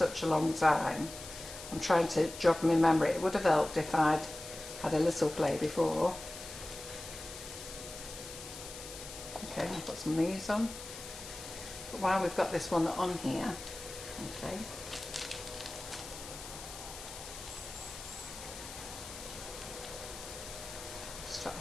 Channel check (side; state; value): left; noise; hiss, 12 dB below the sound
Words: a long time. I'm trying to jog my memory. It would have helped if I'd had a little play before. Okay, I'll put some of these on. But while we've got this one on here, okay. Start